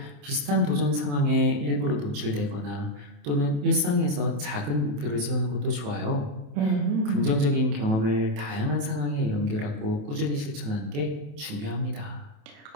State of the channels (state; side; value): late; left; 27 ms